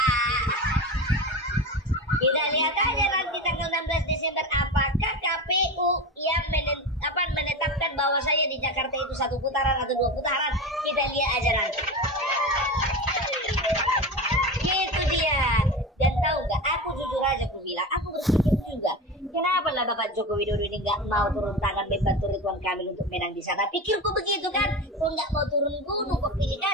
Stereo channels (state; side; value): normal; both; correlation 0.25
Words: Kita lihat aja nanti tanggal 16 Desember apakah KPU yang menetapkan bahwa saya di Jakarta itu 1 putaran atau 2 putaran. Kita lihat aja nanti. Itu dia. Dan tahu nggak? Aku jujur aja aku bilang, aku berpikir juga, kenapa lah Bapak Joko Widodo ini nggak mau turun tangan membantu Ridwan Kamil untuk menang di sana? Pikirku begitu kan? Kok nggak mau turun gunung? Kok pilih